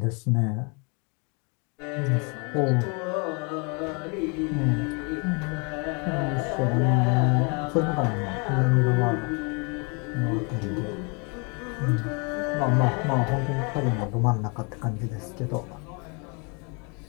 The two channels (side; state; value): right; quieter; 33.8 dB